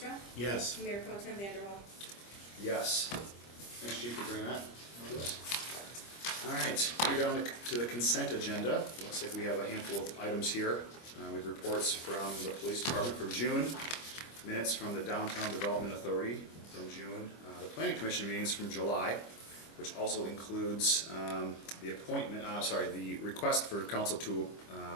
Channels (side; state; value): right; late; 25 ms